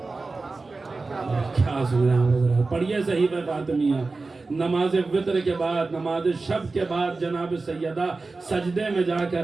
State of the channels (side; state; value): left; quieter; 3.7 dB